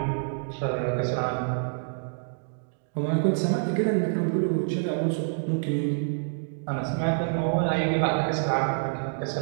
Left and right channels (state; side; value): silent; left; digital silence